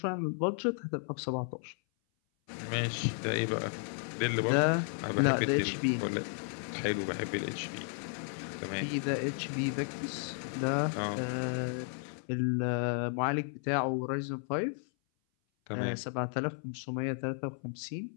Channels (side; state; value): right; silent; 55 dB below the other